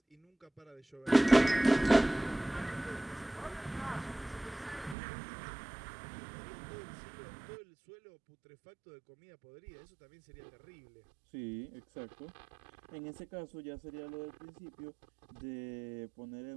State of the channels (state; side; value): drops out; left; at 5.0 s